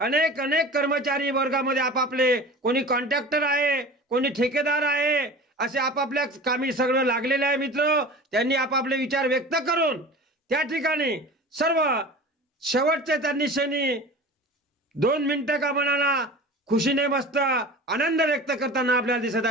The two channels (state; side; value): normal; both; correlation 0.37